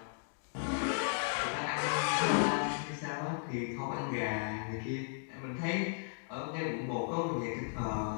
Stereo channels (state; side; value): silent; right; digital silence